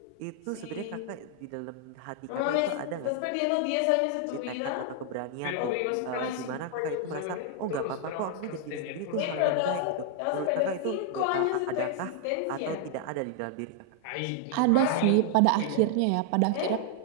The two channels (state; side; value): different; both; correlation 0.00